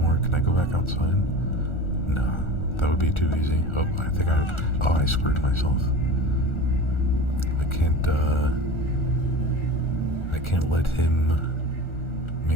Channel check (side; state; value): right; late; 1.4 ms